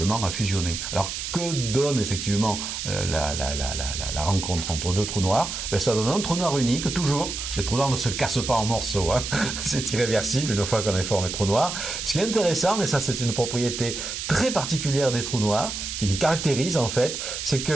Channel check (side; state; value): right; noise; hiss, 5 dB below the sound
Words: à fusionner. Alors que donne effectivement la rencontre entre deux trous noirs? Ben, ça donne un trou noir unique, toujours. Les trous noirs ne se cassent pas en morceaux, hein. C'est irréversible une fois qu'on a formé trou noir. Ce qui est intéressant, et ça c'est une propriété très particulière des trous noirs, qui les caractérise en fait, c'est